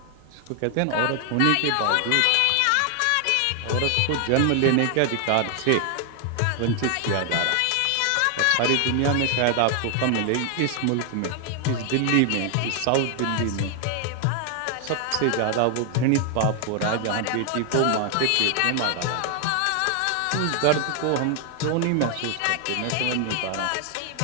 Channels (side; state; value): both; different; correlation 0.00